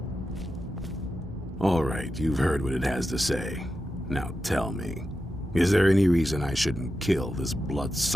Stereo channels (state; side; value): normal; both; correlation 0.90